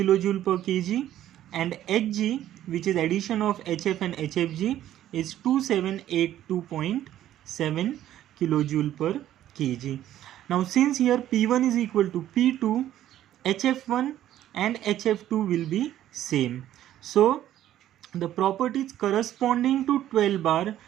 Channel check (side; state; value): left; quieter; 12.4 dB